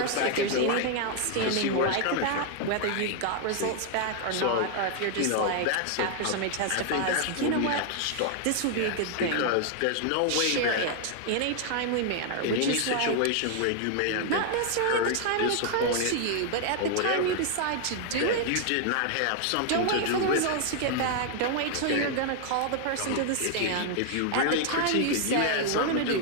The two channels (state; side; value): different; both; correlation 0.00